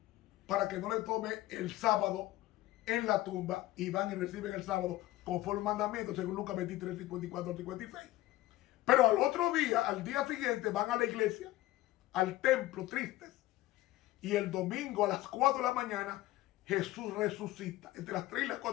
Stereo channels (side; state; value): right; quieter; 16.7 dB